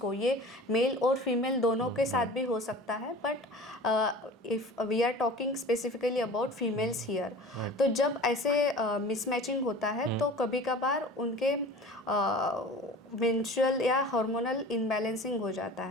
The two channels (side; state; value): both; normal; correlation 0.40